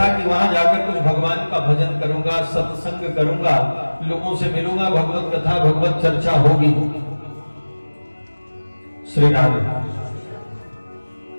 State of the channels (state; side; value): inverted; both; correlation -1.00